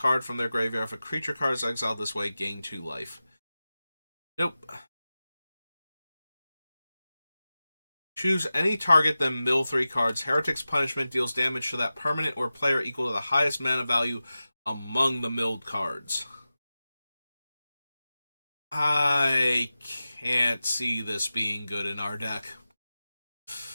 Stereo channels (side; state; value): both; inverted; correlation -0.95